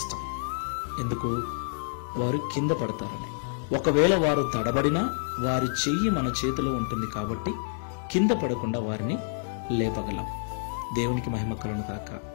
ఎందుకు? వారు కింద పడతారని. ఒకవేళ వారు తడబడినా వారి చెయ్యి మన చేతిలో ఉంటుంది కాబట్టి కింద పడకుండా వారిని లేపగలం. దేవునికి మహిమ కలుగును గాక.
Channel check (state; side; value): silent; right; 57 dB below the other